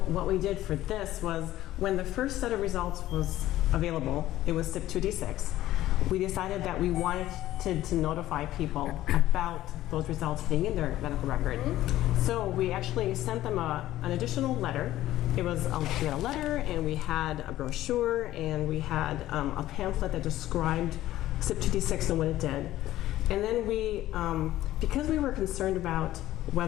what we did for this was when the first set of results was available, it was CYP2D6, we decided that we wanted to notify people about those results being in their medical record. So we actually sent them an additional letter. We had a letter and we had a brochure and we had a pamphlet that described CYP2D6 and what it did. And then we, because we were concerned about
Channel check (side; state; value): right; quieter; 14.6 dB